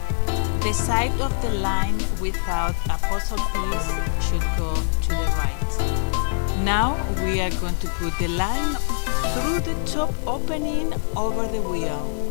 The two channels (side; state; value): right; silent; digital silence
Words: The side of the line without a puzzle piece should go to the right. Now we are going to put the line through the top opening over the wheel.